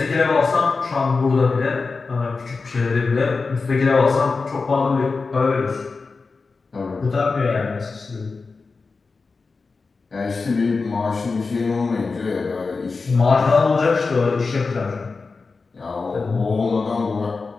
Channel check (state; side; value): quieter; right; 4.3 dB